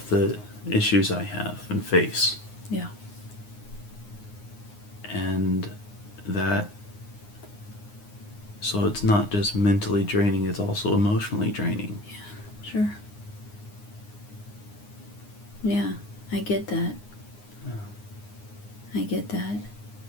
the issues I have and face. Yeah. And that, so it's not just mentally draining, it's also emotionally draining. Yeah, sure. Yeah, I get that. I get that.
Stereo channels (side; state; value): right; late; 9.6 ms